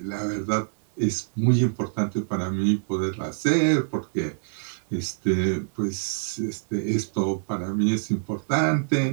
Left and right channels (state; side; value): silent; left; digital silence